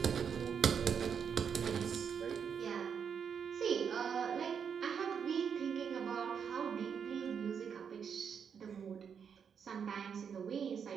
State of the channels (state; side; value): quieter; left; 7.1 dB